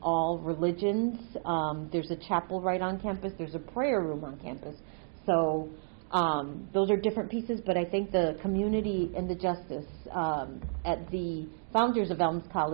all religions. There's a chapel right on campus. There's a prayer room on campus. So those are different pieces, but I think the community and the justice at the founders of Elms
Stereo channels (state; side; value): silent; left; digital silence